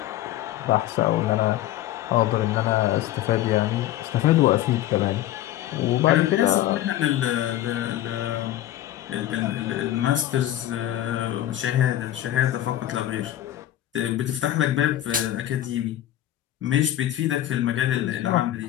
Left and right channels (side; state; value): right; quieter; 13.3 dB